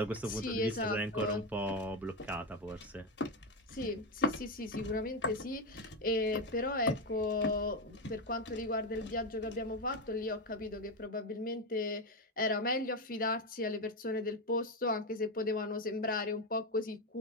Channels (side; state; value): both; normal; correlation 0.12